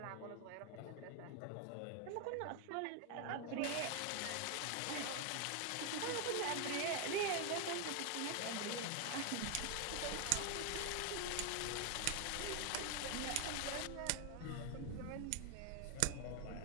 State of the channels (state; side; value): different; both; correlation 0.01